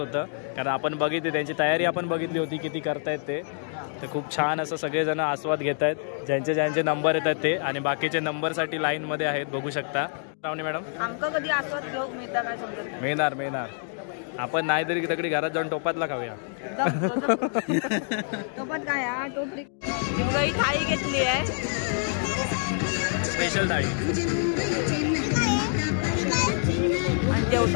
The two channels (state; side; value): silent; right; 60 dB below the other